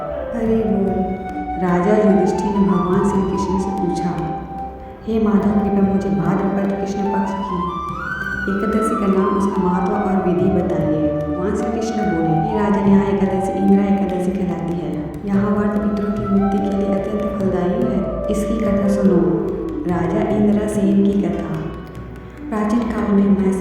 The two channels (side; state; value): both; identical; correlation 1.00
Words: हरि बोल। राजा युधिष्ठिर ने भगवान श्री कृष्ण से पूछा, हे माधव, कृपया मुझे भाद्रपद कृष्ण पक्ष की एकादशी का नाम, उसका महत्व और विधि बताइए। भगवान श्री कृष्ण बोले, हे राजन, यहाँ एकादशी इंदिरा एकादशी कहलाती है। यहाँ व्रत पितरों की मुक्ति के लिए अत्यंत फलदायी है। इसकी कथा सुनो। राजा इंद्रसेन की कथा। प्राचीन काल में